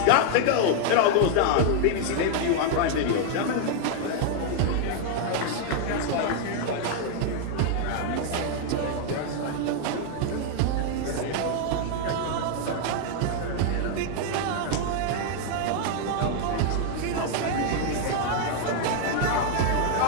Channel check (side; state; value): both; different; correlation 0.00